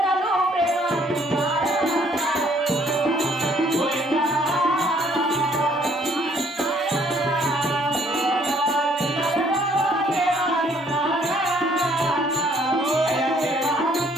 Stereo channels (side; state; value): both; normal; correlation 0.63